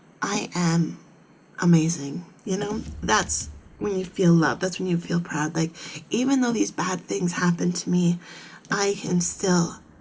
I am amazing. You know, that's when you feel loved. That's when you feel proud. Like, even though these bad things happen to me, I am still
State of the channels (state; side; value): identical; both; correlation 1.00